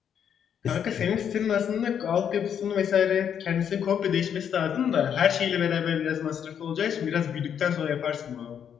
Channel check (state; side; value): quieter; right; 8.4 dB